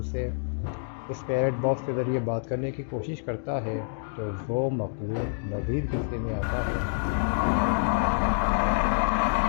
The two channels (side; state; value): right; silent; digital silence